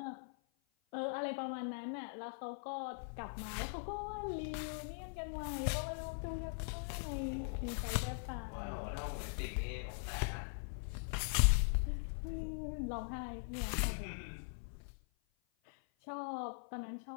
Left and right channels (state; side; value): silent; right; 50 dB below the other